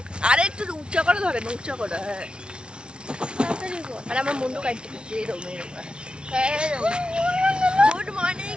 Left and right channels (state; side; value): late; left; 0.056 ms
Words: আরে একটু উচ্চা করে ধরে না, উচ্চা করে। হ্যাঁ তাড়াতাড়ি বল। আর আমার মুন্ডু কাটতে দিচ্ছে এরকম এরকম। Good morning.